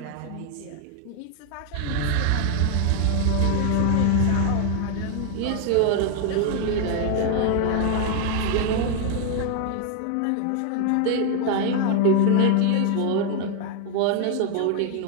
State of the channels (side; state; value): both; different; correlation 0.01